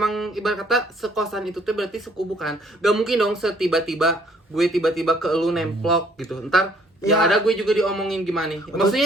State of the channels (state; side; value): normal; both; correlation 0.62